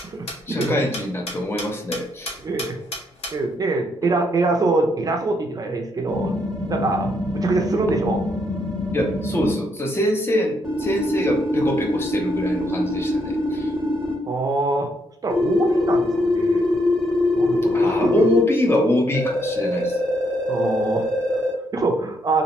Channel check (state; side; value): normal; both; correlation 0.75